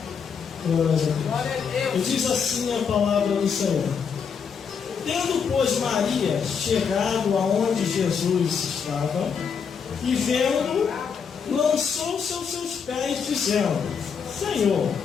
Glória a Deus. E diz assim a palavra do Senhor: tendo, pois, Maria chegado aonde Jesus estava, e vendo, lançou-se aos seus pés, dizendo: Senhor,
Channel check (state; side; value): quieter; right; 6.5 dB